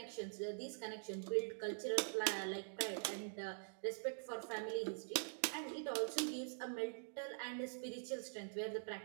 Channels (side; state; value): left; silent; digital silence